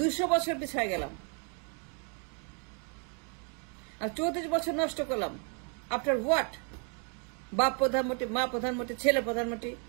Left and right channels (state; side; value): quieter; left; 38.8 dB